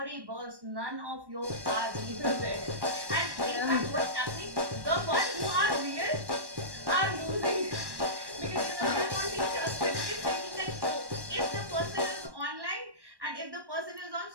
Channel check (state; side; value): late; left; 1.1 ms